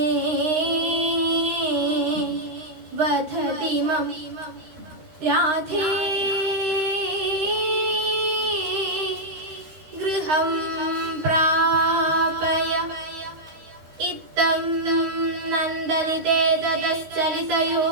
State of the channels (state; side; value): late; left; 13 ms